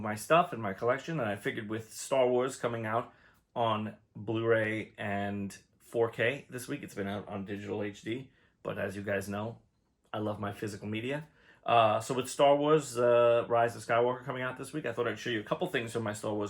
my stuff in my collection, and I figured with Star Wars coming out on Blu-ray and 4K this week, it's been out on digital HD, but as you guys know, I love my physical media. So with Star Wars Rise of Skywalker coming out this week, I thought I'd show you a couple things from my Star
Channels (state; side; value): identical; both; correlation 1.00